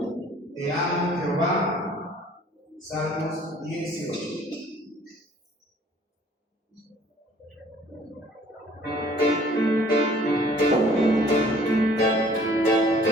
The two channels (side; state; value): both; normal; correlation 0.55